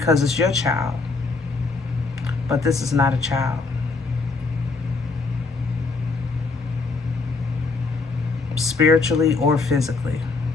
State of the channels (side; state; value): right; quieter; 4.0 dB